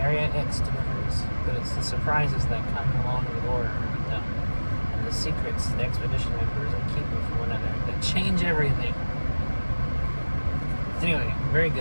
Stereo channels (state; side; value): inverted; both; correlation -1.00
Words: Area X delivers, but it's the surprises that come along the order with them, and the secrets the expedition members are keeping from one another that change everything. Anyway, very